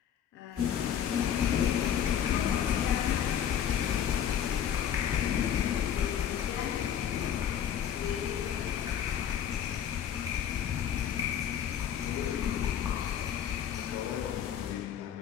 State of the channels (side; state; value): right; quieter; 9.3 dB